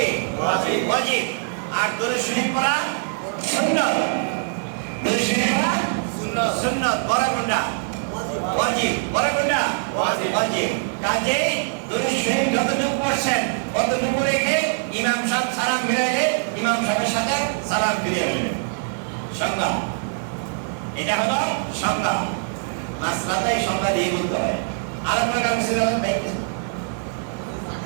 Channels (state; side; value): silent; left; 63 dB below the other